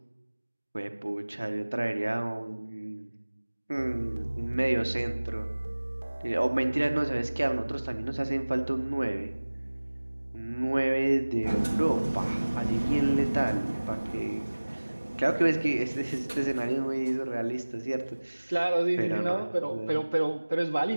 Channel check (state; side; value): inverted; both; correlation -1.00